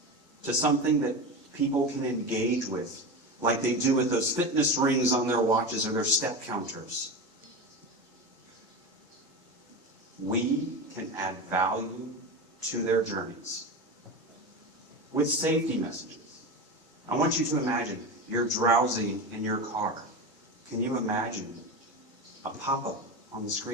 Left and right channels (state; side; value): normal; both; correlation 0.23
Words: to something that people can engage with, like they do with those fitness rings on their watches or their step counters. We can add value to their journeys with safety messages. I want you to imagine you're drowsy in your car. Can you imagine a pop-up on the